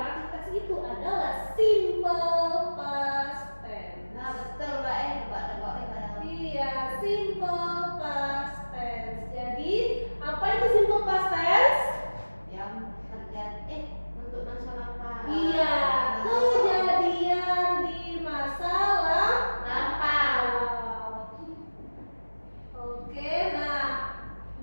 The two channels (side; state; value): both; inverted; correlation -1.00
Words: teks itu adalah simple past tense. Nah betul Kak, nebak-nebak kadang. Iya, simple past tense. Jadi, apa itu simple past tense? Yang terjadi untuk masa lampau. Iya, kejadian di masa lampau. Oke, nah